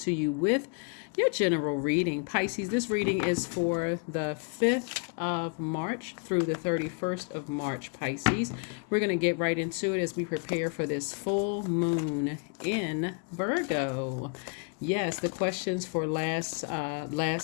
you with your general reading. Pisces, this reading is for the 5th of March through the 31st of March, Pisces. We're going to get right into it as we prepare for this full moon in Virgo. Yes, the questions for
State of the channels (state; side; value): quieter; right; 39.9 dB